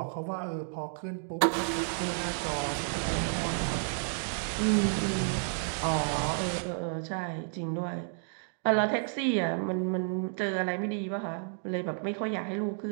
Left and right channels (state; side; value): silent; left; 57 dB below the other